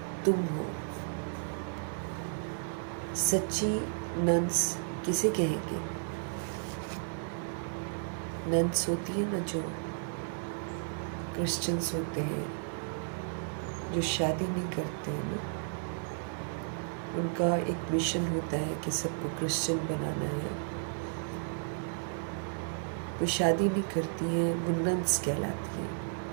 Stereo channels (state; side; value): silent; left; 56 dB below the other